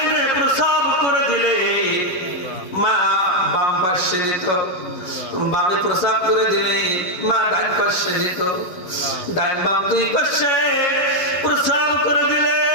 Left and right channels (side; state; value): right; late; 11 ms